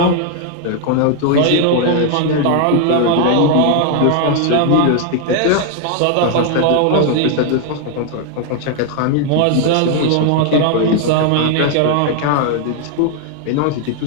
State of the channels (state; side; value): different; both; correlation 0.00